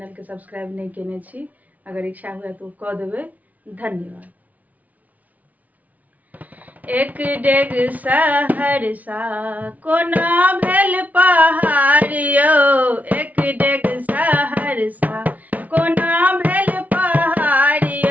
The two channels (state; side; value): late; left; 0.073 ms